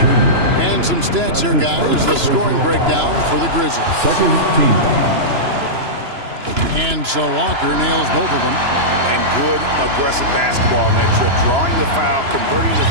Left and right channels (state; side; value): late; left; 3.0 ms